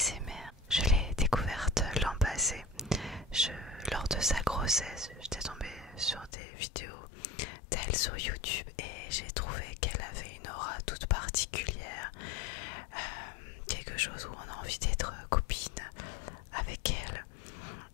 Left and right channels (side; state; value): right; drops out; at 6.3 s